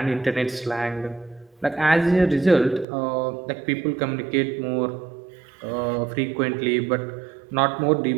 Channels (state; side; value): drops out; left; at 2.9 s